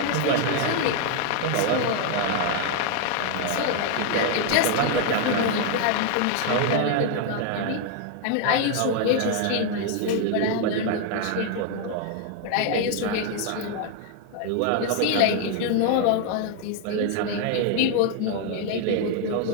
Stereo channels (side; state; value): both; different; correlation 0.00